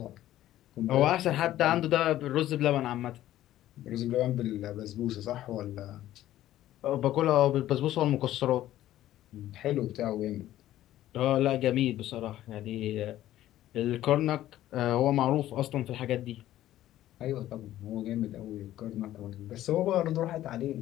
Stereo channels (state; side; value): quieter; right; 13.7 dB